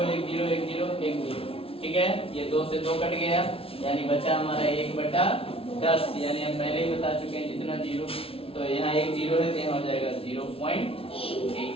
1 0 1 0 1 0। ठीक है, ये 2 से 2 कट गया, यानी बचा हमारा 1 बटा 10। यानी हम पहले ही बता चुके हैं जितना 0, तो यहाँ 1 0 है तो यहाँ हो जाएगा 0.8।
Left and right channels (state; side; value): late; right; 0.27 ms